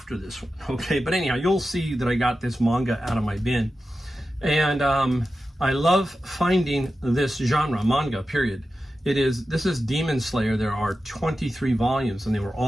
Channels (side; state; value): both; normal; correlation 0.92